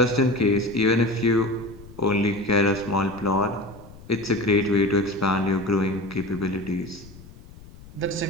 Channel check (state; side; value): noise; left; rumble, 19 dB below the sound